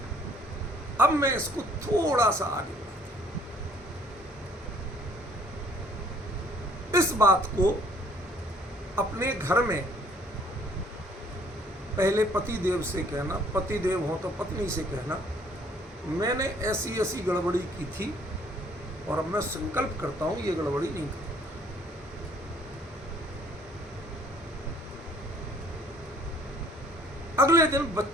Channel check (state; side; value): normal; both; correlation 0.59